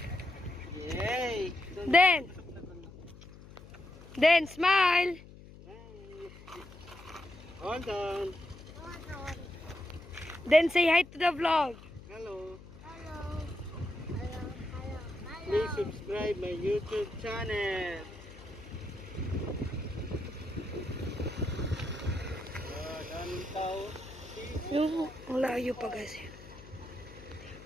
Yay! Then smile. Hold on. Then say hi to the vlog. Hello. Please subscribe my YouTube channel. Dami tao. Yung malayo pa guys.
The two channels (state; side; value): noise; left; hum, 18 dB below the sound